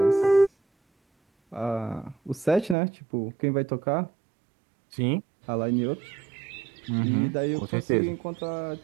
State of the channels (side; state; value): left; drops out; at 2.8 s